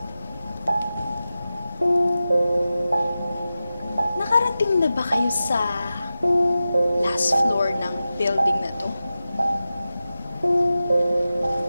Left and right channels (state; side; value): inverted; both; correlation -0.94